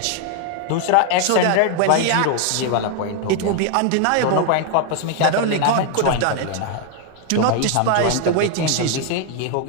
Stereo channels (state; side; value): different; both; correlation 0.00